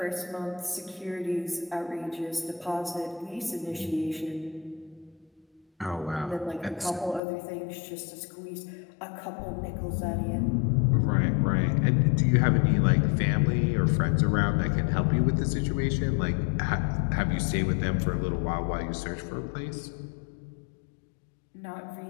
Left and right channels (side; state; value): right; drops out; at 7.2 s